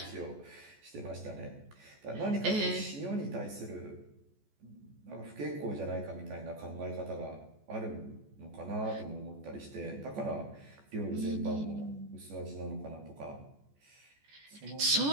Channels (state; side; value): late; left; 14 ms